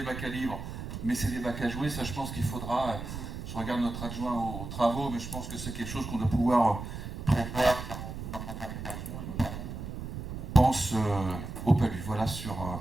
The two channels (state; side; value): noise; right; rumble, 8 dB below the sound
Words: bacs à livres, mais c'est des bacs à jouer. Ça je pense qu'il faudra, je regarde notre adjoint aux travaux, mais je pense que c'est quelque chose qu'on doit pouvoir prévoir dans notre aménagement. On pense au PALU. Voilà sur